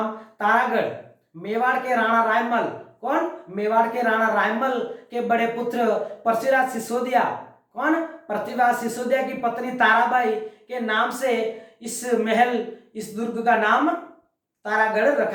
तारागढ़ मेवाड़ के राणा रायमल, कौन? मेवाड़ के राणा रायमल के बड़े पुत्र पृथ्वीराज सिसोदिया, कौन? पृथ्वीराज सिसोदिया की पत्नी ताराबाई के नाम से इस महल, इस दुर्ग का नाम तारागढ़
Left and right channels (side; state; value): both; identical; correlation 1.00